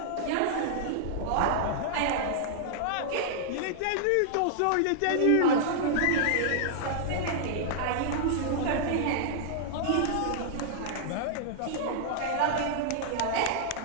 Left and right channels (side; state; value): both; different; correlation -0.01